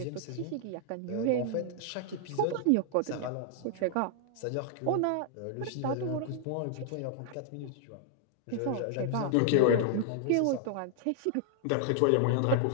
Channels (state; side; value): different; both; correlation -0.01